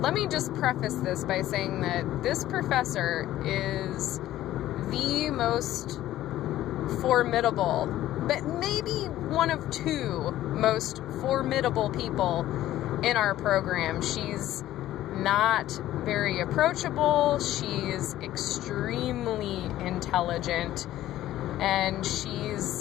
let me just preface this by saying that this professor is the most formidable, but maybe one of two most formidable people in our program. She's not very approachable. She's extremely intelligent, and she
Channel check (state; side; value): quieter; right; 13.9 dB